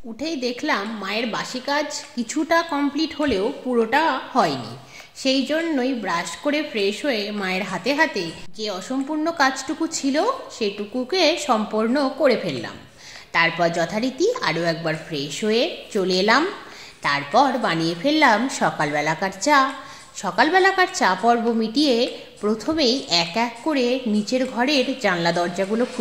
উঠেই দেখলাম মায়ের বাসি কাজ কিছুটা কমপ্লিট হলেও পুরোটা হয়নি। সেই জন্যই ব্রাশ করে ফ্রেশ হয়ে মায়ের হাতে হাতে যে অসম্পূর্ণ কাজটুকু ছিল সেটুকুকে সম্পূর্ণ করে ফেললাম। তারপর যথারীতি আরও একবার ফ্রেশ হয়ে চলে এলাম। তারপর বানিয়ে ফেললাম সকালবেলাকার চা। সকালবেলাকার চা পর্ব মিটিয়ে প্রথমেই এক এক করে নিচের ঘরের জানলা দরজাগুলো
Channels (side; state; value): both; identical; correlation 1.00